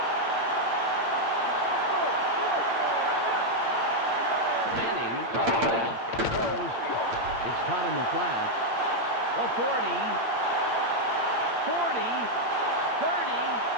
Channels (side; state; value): left; late; 8.7 ms